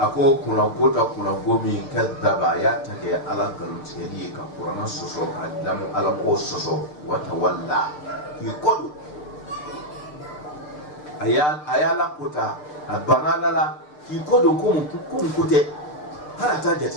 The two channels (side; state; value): right; late; 6.7 ms